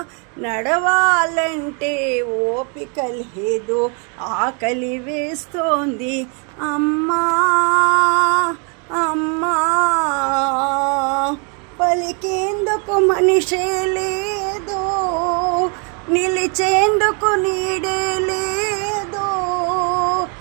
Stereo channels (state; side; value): quieter; left; 37.5 dB